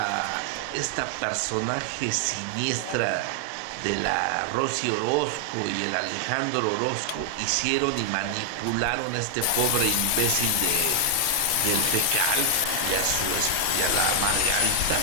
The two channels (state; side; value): different; both; correlation 0.00